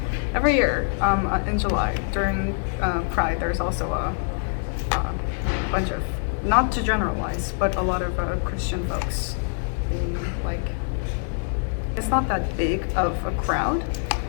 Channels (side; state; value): right; silent; 62 dB below the other